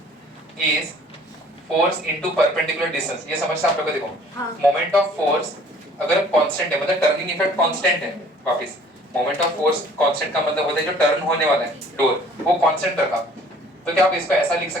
is force into perpendicular distance, ये समझते आप लोग को। देखो मोमेंट ऑफ फोर्स अगर कांस्टेंट है मतलब टर्निंग इफेक्ट कांस्टेंट है, वापस मोमेंट ऑफ फोर्स कांस्टेंट का मतलब होता है जो टर्न होने वाला है डोर वो कांस्टेंट रखा। तो क्या आप इसको ऐसा लिख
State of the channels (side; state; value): both; normal; correlation 0.54